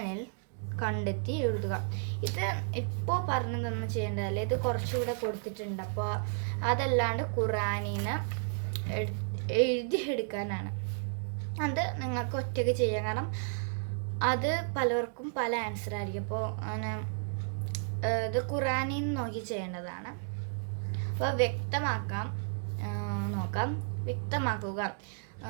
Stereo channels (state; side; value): silent; left; digital silence